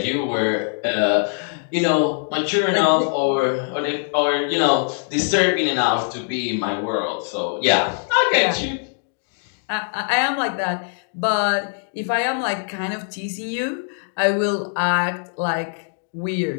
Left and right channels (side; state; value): right; silent; digital silence